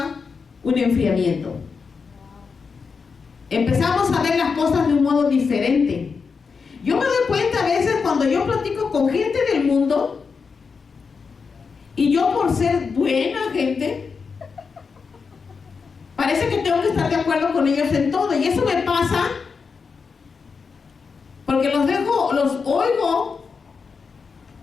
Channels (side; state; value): right; quieter; 5.3 dB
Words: un enfriamiento. Empezamos a ver las cosas de un modo diferente. Yo me doy cuenta a veces cuando yo platico con gente del mundo, y yo por ser buena gente, parece que tengo que estar de acuerdo con ellos en todo, y eso me pasa porque los oigo